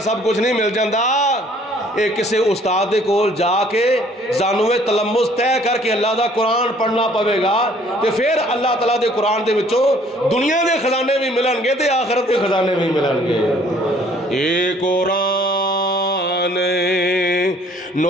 سب کچھ نہیں مل جاندا. اے کسے استاد دے کول جا کے زانوے تلمس طے کر کے اللہ دا قرآن پڑھنا پوے گا تے پھر اللہ تعالیٰ دے قرآن دے وچوں دنیا دے خزانے بھی ملن گے تے آخرت دے خزانے بھی ملن گے. اے قرآن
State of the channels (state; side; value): normal; both; correlation 0.58